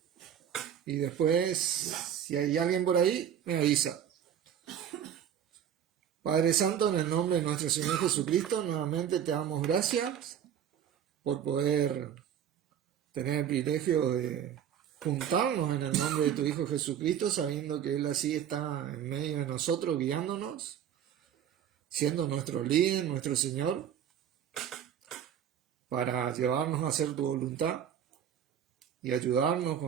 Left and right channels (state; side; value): quieter; left; 9.4 dB